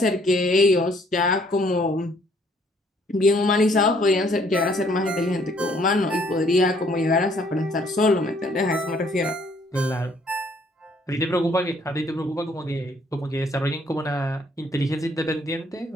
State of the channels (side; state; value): both; normal; correlation 0.64